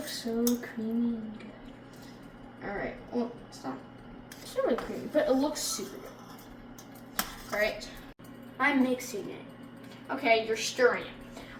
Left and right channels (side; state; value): both; identical; correlation 1.00